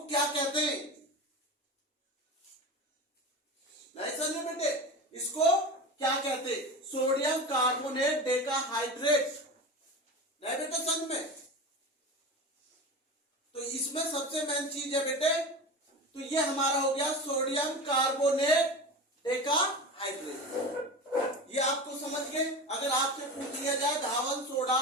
क्या कहते हैं। नहीं समझे बेटे, इसको क्या कहते हैं? Sodium carbonate decahydrate. नहीं बेटे समझ में? तो इसमें सबसे मेन चीज है बेटे, तो ये हमारा हो गया सोडियम कार्बोनेट डेकाहाइड्रेट। ये आपको समझ गए। अगर आपसे पूछ लिया जाए धावन सोडा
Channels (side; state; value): both; normal; correlation 0.28